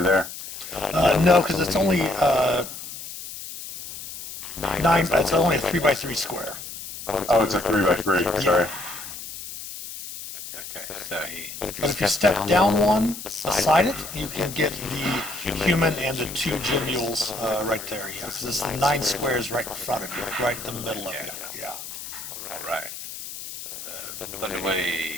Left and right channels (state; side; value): noise; left; hiss, 10 dB below the sound